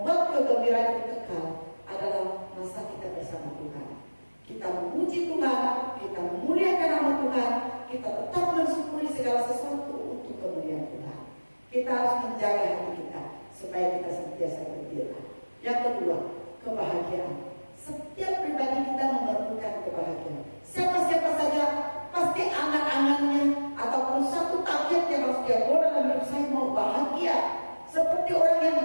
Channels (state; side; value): inverted; both; correlation -1.00